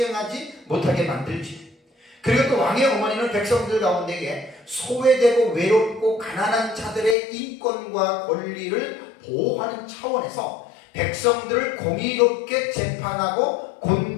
못하게 만들지. 그리고 또 왕의 어머니는 백성들 가운데에 소외되고 외롭고 가난한 자들의 인권과 권리를 보호하는 차원에서 백성들을 공의롭게 재판하고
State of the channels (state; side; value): drops out; right; at 7.2 s